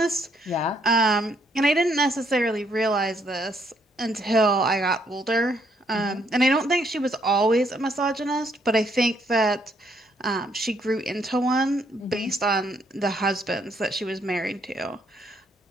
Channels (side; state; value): both; normal; correlation 0.71